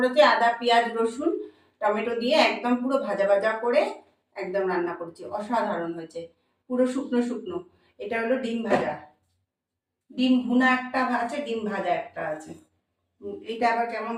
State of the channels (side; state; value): both; identical; correlation 1.00